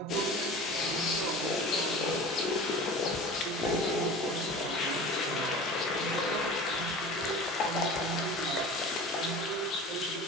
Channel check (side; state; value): both; normal; correlation 0.37